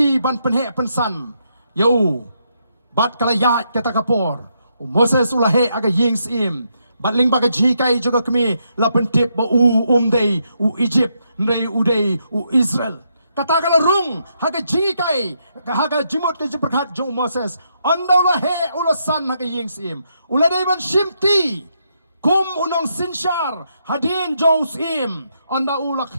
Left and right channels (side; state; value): both; inverted; correlation -0.78